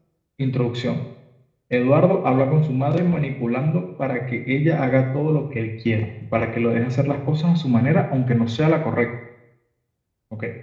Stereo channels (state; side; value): identical; both; correlation 1.00